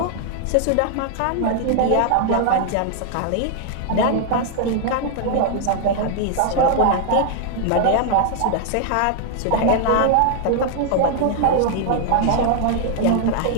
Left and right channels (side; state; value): both; different; correlation 0.00